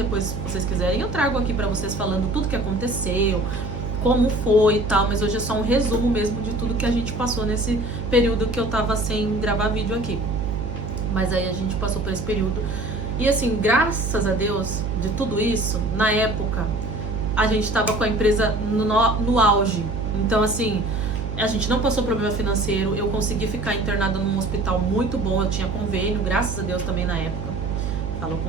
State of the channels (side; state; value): right; noise; hum, 4 dB below the sound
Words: vocês quiserem, eu trago aqui pra vocês falando tudo que aconteceu, como foi e tal, mas hoje é só um resumo mesmo de tudo que a gente passou nesse período que eu tava sem gravar vídeo aqui. Mas aí a gente passou por esse período. E assim, graças a Deus, de tudo isso, na época, a gente tava com a empresa no auge. Então assim, a gente não passou problema financeiro, eu consegui ficar internada num hospital muito bom, eu tinha convênio, graças a Deus também na época. Falo,